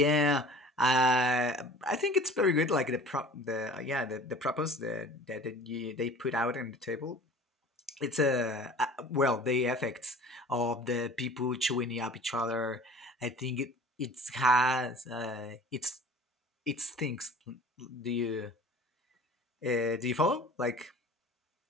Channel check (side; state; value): both; normal; correlation 0.44